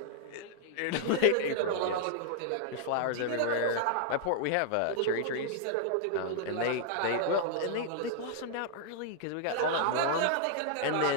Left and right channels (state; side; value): different; both; correlation -0.01